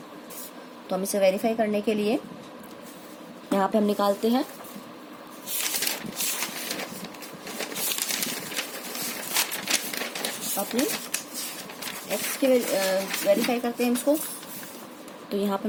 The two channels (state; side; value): identical; both; correlation 1.00